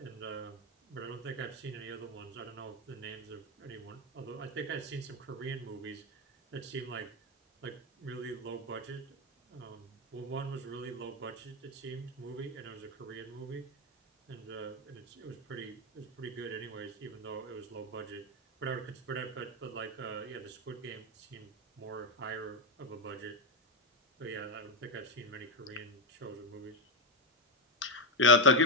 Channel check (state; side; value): normal; both; correlation 0.07